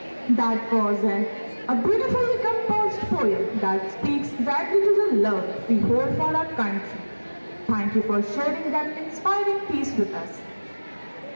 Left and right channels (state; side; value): inverted; both; correlation -1.00